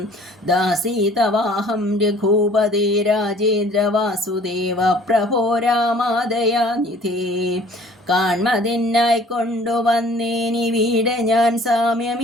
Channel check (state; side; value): normal; both; correlation 0.52